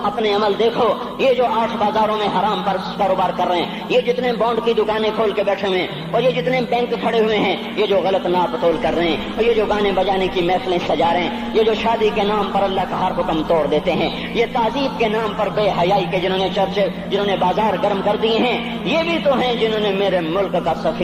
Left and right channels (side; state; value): both; identical; correlation 1.00